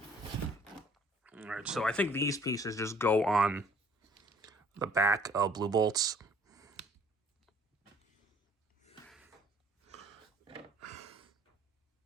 Alright, so I think these pieces just go on the back of blue bolts.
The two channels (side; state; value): both; normal; correlation 0.57